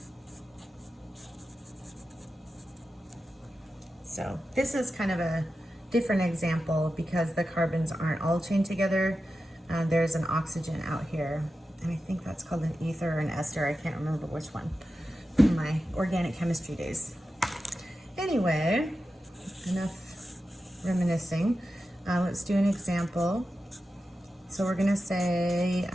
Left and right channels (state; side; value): normal; both; correlation 0.92